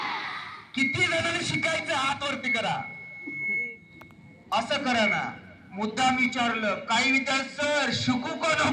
किती जणांनी शिकायचं हात वरती करा. असं करा ना. मुद्दाम विचारलं काही विचार सर शिकू का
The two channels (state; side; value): identical; both; correlation 1.00